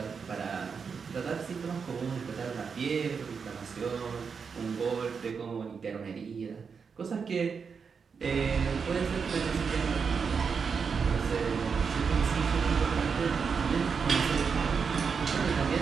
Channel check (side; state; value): left; quieter; 5.8 dB